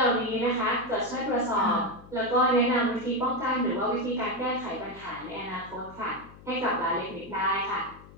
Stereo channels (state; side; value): noise; left; hum, 20 dB below the sound